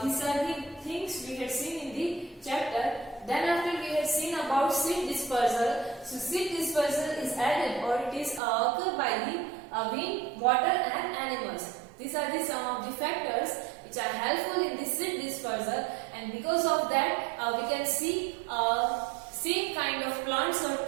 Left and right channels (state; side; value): drops out; left; at 8.4 s